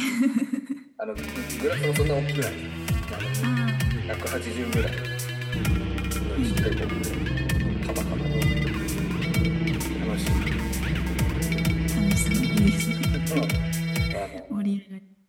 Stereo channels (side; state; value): both; identical; correlation 1.00